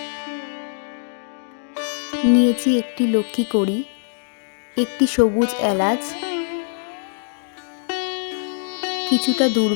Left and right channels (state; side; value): silent; right; digital silence